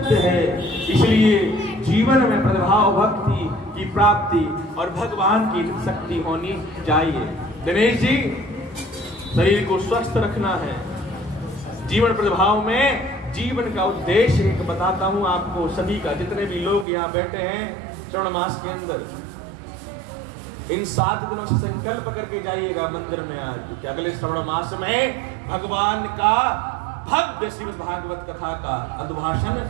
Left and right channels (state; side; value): drops out; left; at 16.9 s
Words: है। इसलिए जीवन में प्रतिभाव भक्ति की प्राप्ति और भगवान की शक्ति होनी चाहिए। दिनेश जी, शरीर को स्वस्थ रखना है। जीवन प्रतिभाव में जीवन का उद्देश्य एक बताता हूं आपको सभी का, जितने भी लोग यहाँ बैठे हैं श्रवण मास के अंदर, इन 7 दिनों से संकल्प करके जाइएगा मंदिर में आज कि अगले श्रवण मास में भगवान का भव्य श्रीमद् भागवत कथा का अभिभाषण